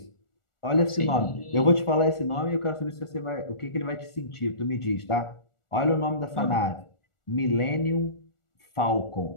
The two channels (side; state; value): right; late; 1.4 ms